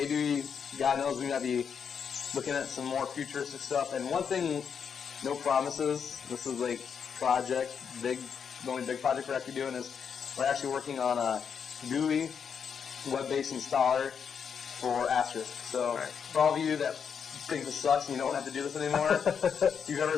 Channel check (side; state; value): right; quieter; 7.0 dB